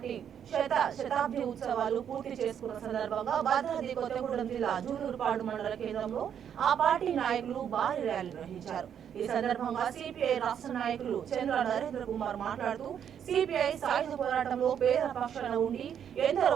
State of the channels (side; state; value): left; quieter; 8.7 dB